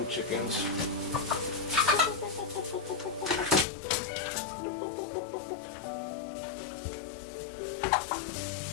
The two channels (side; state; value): right; drops out; at 3.7 s